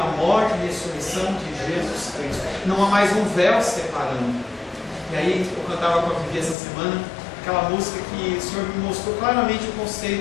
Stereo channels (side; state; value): right; drops out; at 6.6 s